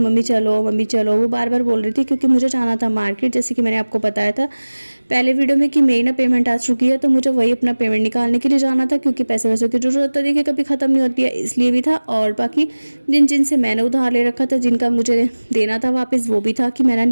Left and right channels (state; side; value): inverted; both; correlation -1.00